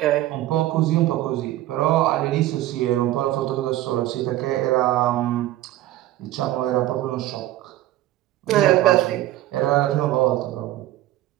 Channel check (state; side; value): quieter; left; 14.8 dB